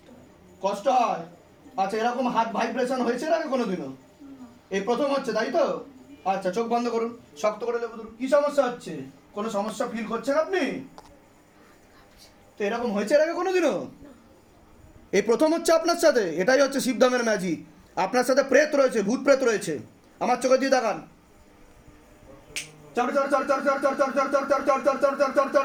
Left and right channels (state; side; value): identical; both; correlation 1.00